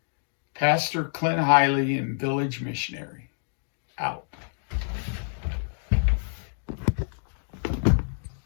Pastor Clint Hiley and Village Missionary, out.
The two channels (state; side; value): silent; right; digital silence